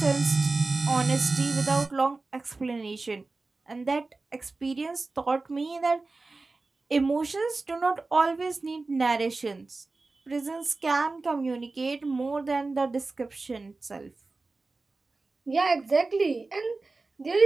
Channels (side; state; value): left; quieter; 3.6 dB